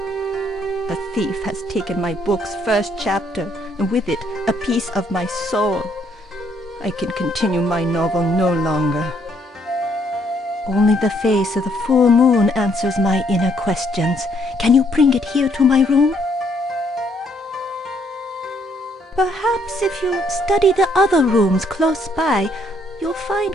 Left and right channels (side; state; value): both; normal; correlation 0.69